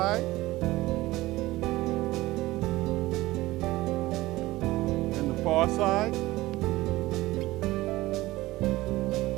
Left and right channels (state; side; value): quieter; left; 18.4 dB